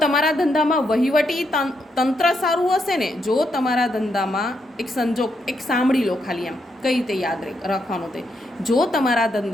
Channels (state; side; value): normal; both; correlation 0.80